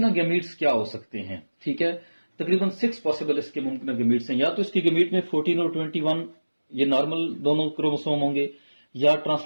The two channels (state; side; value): inverted; both; correlation -1.00